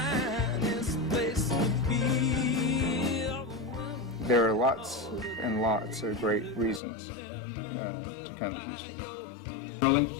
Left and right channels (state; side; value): drops out; right; at 6.8 s